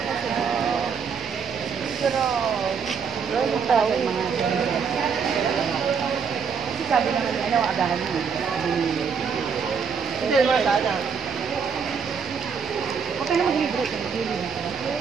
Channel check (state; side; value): quieter; left; 6.2 dB